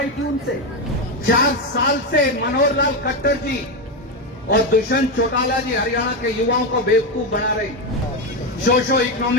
थी उनसे। 4 साल से मनोहर लाल खट्टर जी और दुष्यंत चौटाला जी हरियाणा के युवाओं को बेवकूफ बना रहे। सोशो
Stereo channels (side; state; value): both; normal; correlation 0.11